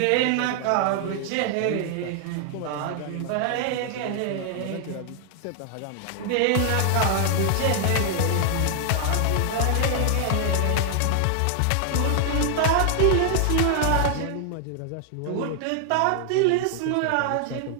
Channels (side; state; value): both; different; correlation 0.00